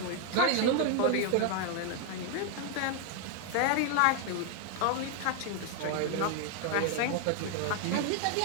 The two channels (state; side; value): different; both; correlation 0.00